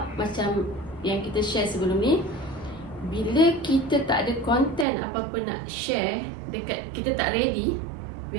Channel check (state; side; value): drops out; left; at 4.9 s